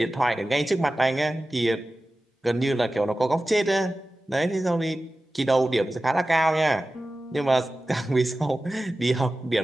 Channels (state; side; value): normal; both; correlation 0.95